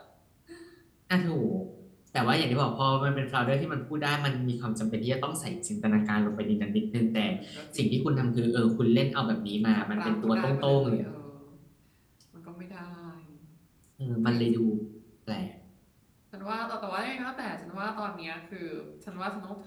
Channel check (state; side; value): identical; both; correlation 1.00